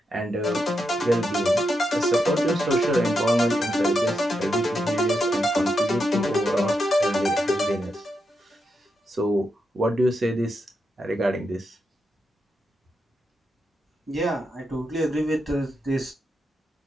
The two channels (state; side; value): normal; both; correlation 0.84